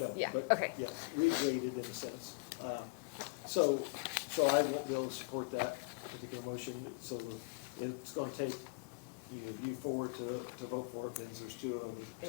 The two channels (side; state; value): right; quieter; 30.0 dB